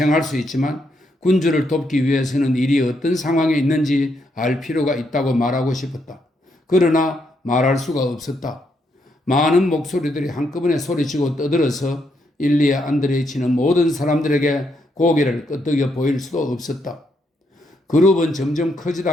수 있지만 군주를 돕기 위해서는 일이 어떤 상황에 있는지 알 필요가 있다고 말하고 싶었다. 그러나 말할 수가 없었다. 많은 목소리들이 한꺼번에 소리치고 떠들어서 일리아 안드레이치는 모든 사람들에게 고개를 끄덕여 보일 수도 없었다. 그룹은 점점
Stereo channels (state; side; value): normal; both; correlation 0.77